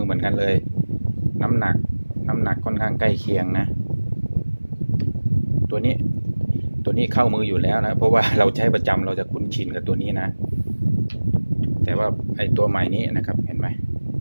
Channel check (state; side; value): inverted; both; correlation -1.00